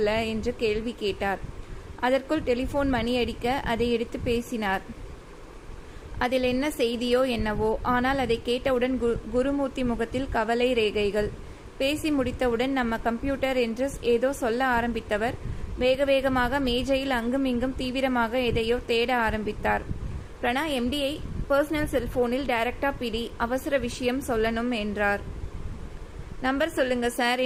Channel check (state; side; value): identical; both; correlation 1.00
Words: என்று கேள்வி கேட்டார். அதற்குள் டெலிஃபோன் மணி அடிக்க அதை எடுத்து பேசினார். அதில் என்ன செய்தியோ என்னவோ, ஆனால் அதை கேட்டவுடன் குருமூர்த்தி முகத்தில் கவலை ரேகைகள். பேசி முடித்தவுடன் நம்ம கம்ப்யூட்டர் என்று ஏதோ சொல்ல ஆரம்பித்தவர் வேக வேகமாக மேஜையில் அங்கும் இங்கும் தீவிரமாக எதையோ தேட ஆரம்பித்தார். பிரணா எம்டியை பர்சனல் செல்போனில் டைரக்டா பிடி, அவசர விஷயம் சொல்லணும் என்றார். நம்பர் சொல்லுங்க சார்